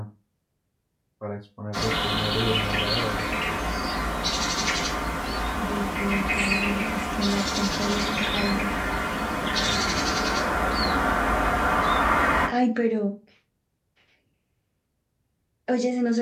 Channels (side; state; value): both; identical; correlation 1.00